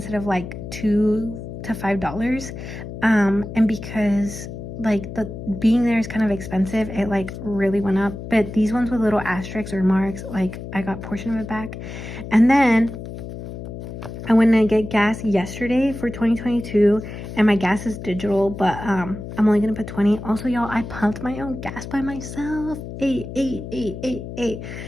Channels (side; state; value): left; noise; hum, 10 dB below the sound